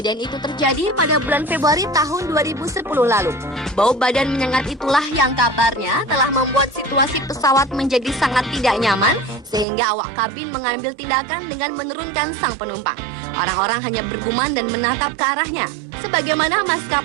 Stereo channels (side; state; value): left; drops out; at 9.7 s